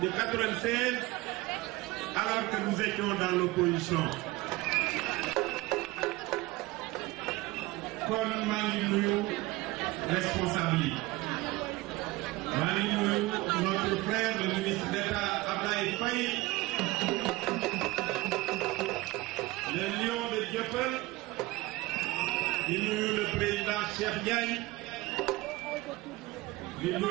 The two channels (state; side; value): quieter; left; 20.3 dB